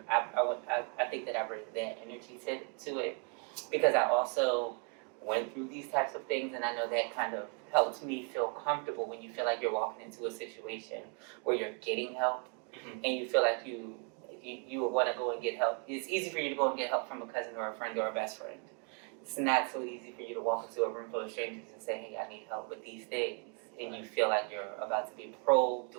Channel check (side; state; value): left; quieter; 39.0 dB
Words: think that I bring that energy to it because I also went through these types of things, and I know that kind of helps me feel comfortable when you feel like you're walking into a situation where you're getting help. And you feel like you would want to go and get help. It's easy for you to go and get help from a cousin or a friend or a best friend. It's not so easy for you to walk into a room full of strangers and say, hey, I need help with these things. And you feel like you're about to be probed,